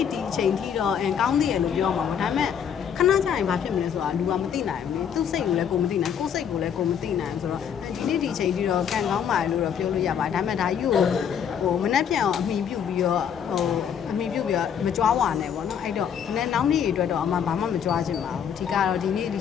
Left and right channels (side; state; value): right; quieter; 8.0 dB